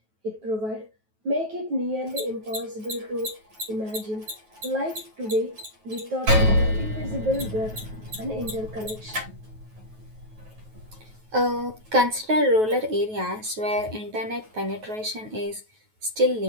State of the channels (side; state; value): left; late; 9.3 ms